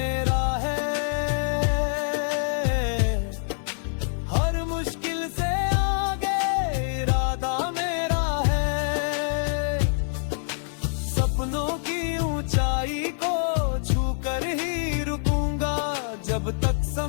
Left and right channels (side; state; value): right; silent; 61 dB below the other